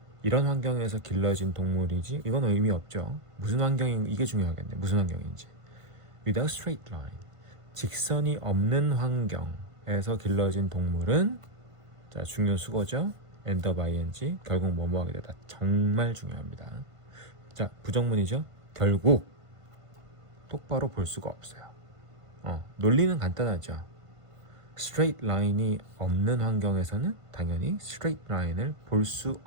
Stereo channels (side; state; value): left; late; 1.5 ms